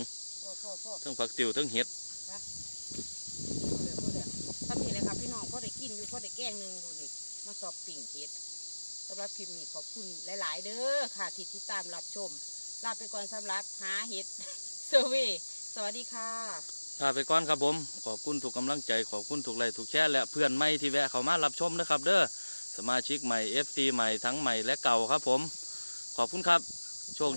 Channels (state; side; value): inverted; both; correlation -1.00